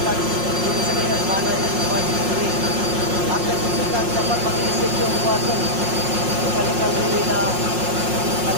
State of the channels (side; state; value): left; late; 5.6 ms